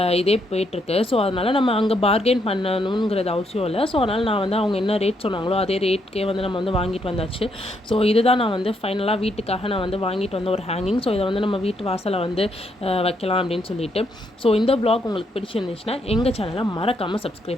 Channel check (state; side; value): normal; both; correlation 0.76